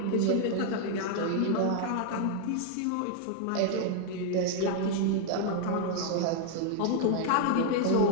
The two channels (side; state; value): both; different; correlation 0.00